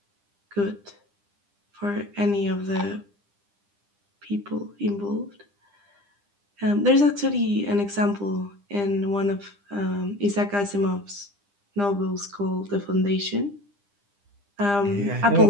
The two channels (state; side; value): late; left; 9.9 ms